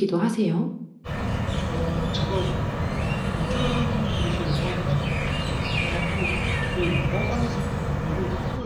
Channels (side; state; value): both; identical; correlation 1.00